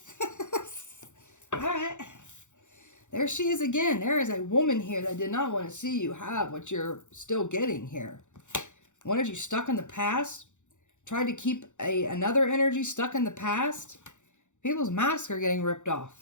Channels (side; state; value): right; late; 0.85 ms